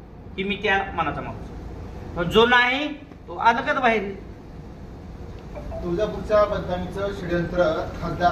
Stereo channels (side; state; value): both; identical; correlation 1.00